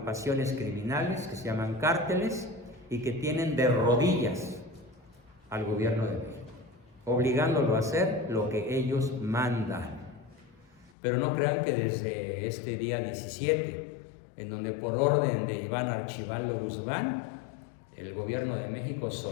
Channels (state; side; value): drops out; right; at 10.9 s